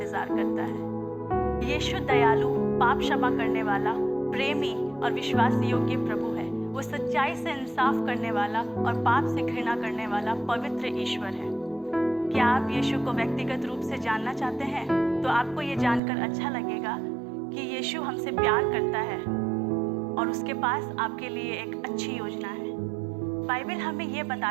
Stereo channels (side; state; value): left; drops out; at 16.0 s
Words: करता है। यीशु दयालु, पाप क्षमा करने वाला, प्रेमी और विश्वास योग्य प्रभु है। वो सच्चाई से इंसाफ करने वाला और पाप से घृणा करने वाला पवित्र ईश्वर है। क्या आप यीशु को व्यक्तिगत रूप से जानना चाहते हैं? तो आपको ये जानकर अच्छा लगेगा कि यीशु हमसे प्यार करता है और उसके पास आपके लिए एक अच्छी योजना है। बाइबल हमें ये